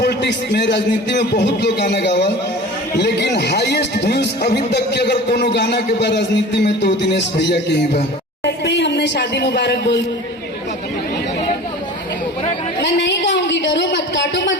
में, राजनीति में बहुत लोग गाना गावा, लेकिन हाईएस्ट व्यूज अभी तक के अगर कोनो गाना के बाद राजनीति में तो दिनेश भैया के ही बा। हमने शादी मुबारक बोल, मैं नहीं गाऊंगी, डरो मत, काटो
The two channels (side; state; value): both; normal; correlation 0.39